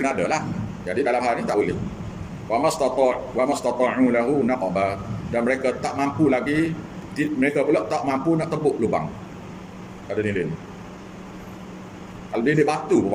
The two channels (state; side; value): identical; both; correlation 1.00